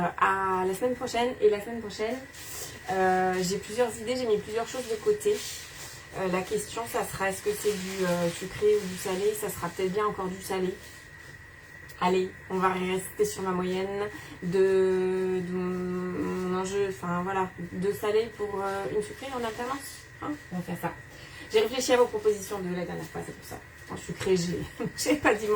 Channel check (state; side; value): identical; both; correlation 1.00